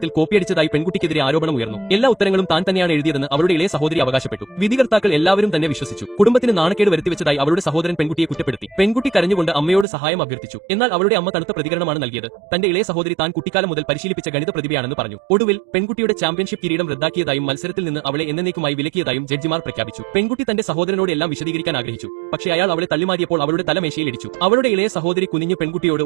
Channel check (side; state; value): left; drops out; at 9.9 s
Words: കോപ്പിയടിച്ചതായി പെൺകുട്ടിക്കെതിരെ ആരോപണം ഉയർന്നു. എല്ലാ ഉത്തരങ്ങളും താൻ തന്നെയാണ് എഴുതിയതെന്ന് അവളുടെ ഇളയ സഹോദരി അവകാശപ്പെട്ടു. വിധികർത്താക്കൾ എല്ലാവരും തന്നെ വിശ്വസിച്ചു. കുടുംബത്തിന് നാണക്കേട് വരുത്തിവെച്ചതായി അവളുടെ സഹോദരൻ പെൺകുട്ടിയെ കുറ്റപ്പെടുത്തി. പെൺകുട്ടി കരഞ്ഞുകൊണ്ട് അമ്മയോട് സഹായം അഭ്യർത്ഥിച്ചു. എന്നാൽ അവളുടെ അമ്മ തണുത്ത പ്രതികരണമാണ് നൽകിയത്. തന്റെ ഇളയ സഹോദരി താൻ കുട്ടിക്കാലം മുതൽ പരിശീലിപ്പിച്ച ഗണിത പ്രതിഭയാണെന്ന് പറഞ്ഞു. ഒടുവിൽ പെൺകുട്ടിയുടെ ചാമ്പ്യൻഷിപ്പ് കിരീടം റദ്ദാക്കിയതായും മത്സരത്തിൽ നിന്ന് അവളെ എന്നേക്കുമായി വിലക്കിയതായും ജഡ്ജിമാർ പ്രഖ്യാപിച്ചു. പെൺകുട്ടി തന്റെ സഹോദരനോട് എല്ലാം വിശദീകരിക്കാൻ ആഗ്രഹിച്ചു. പക്ഷേ അയാൾ അവളെ തള്ളിമാരിയപ്പോൾ അവളുടെ തലമേശയിൽ ഇടിച്ചു. അവളുടെ ഇളയ സഹോദരി കുനിഞ്ഞു പെൺകുട്ടിയോട്